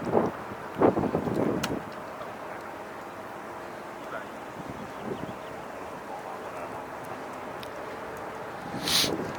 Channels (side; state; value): both; identical; correlation 1.00